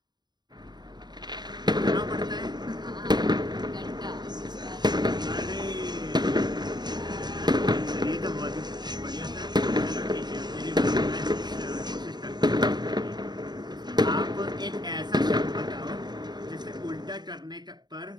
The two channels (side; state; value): left; late; 0.20 ms